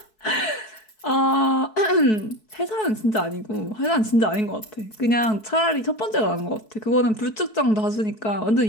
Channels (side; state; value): right; late; 4.6 ms